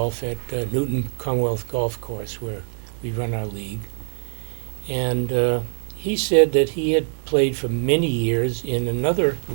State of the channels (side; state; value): left; silent; digital silence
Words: at Newton Commonwealth Golf Course where we run our league, and he said that he had played for many years in another